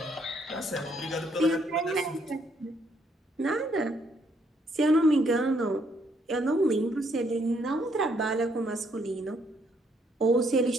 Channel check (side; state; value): both; normal; correlation 0.70